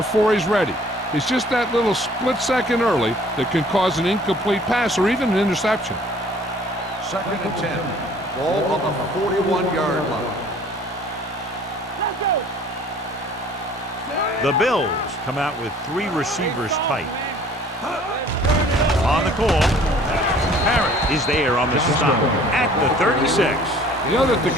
he's ready. It's just that little split second early that can cause an incomplete pass or even an interception. 2nd and 10. Ball on the 41-yard line. The Bills come out with 3 receivers tight. On the call, Parrott is there on the stop at the 36. You know that the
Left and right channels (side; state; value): both; normal; correlation 0.53